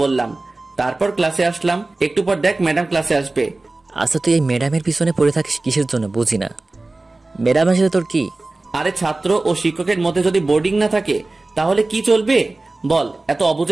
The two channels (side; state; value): left; quieter; 3.1 dB